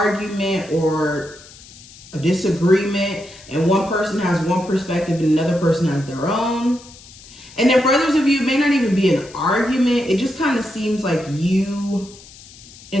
or a disagreement, and one person has one perspective and another person has their own. And then for others of you, it may not even be an argument. It just kind of seems like you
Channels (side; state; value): left; noise; hiss, 21 dB below the sound